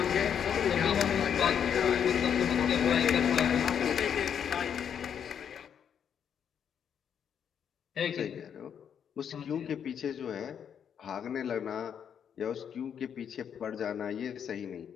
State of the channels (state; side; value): quieter; right; 8.2 dB